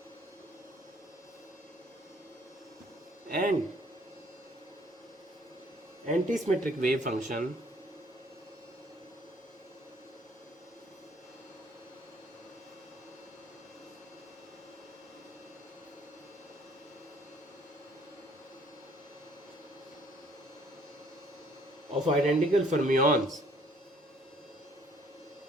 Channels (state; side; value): normal; both; correlation 0.60